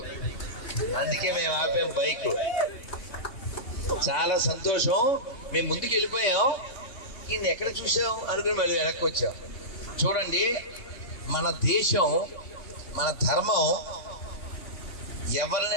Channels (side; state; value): right; late; 3.6 ms